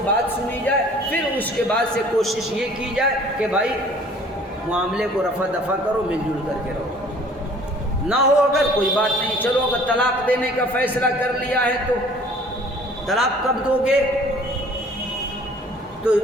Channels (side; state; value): both; normal; correlation 0.52